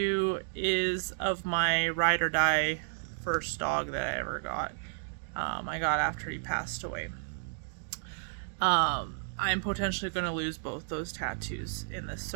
is of my ride or die first dog that I ever got. I got after he passed away. I'm potentially going to lose both those tattoos in this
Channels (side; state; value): left; silent; digital silence